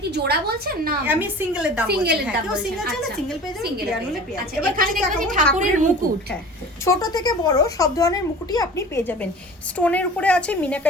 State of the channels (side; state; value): both; normal; correlation 0.40